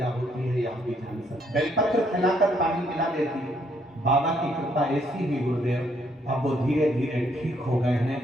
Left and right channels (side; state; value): both; normal; correlation 0.70